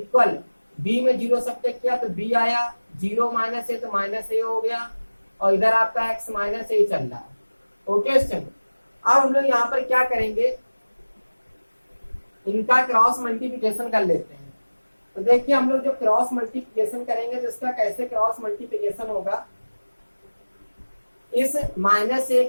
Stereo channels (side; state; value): both; inverted; correlation -1.00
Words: b में 0 सबसे किया तो b आया, 0 - a तो -a हो गया और इधर आपका x - a चल रहा है। ओके स्टूडेंट, अब हम लोग यहाँ पर क्या करेंगे, इनका क्रॉस मल्टीप्लिकेशन कर लेते हैं। तो देखिए हम लोग जब क्रॉस मल्टीप्लिकेशन करेंगे तो इसका कैसे क्रॉस मल्टीप्लिकेशन होगा, इस माइनस ए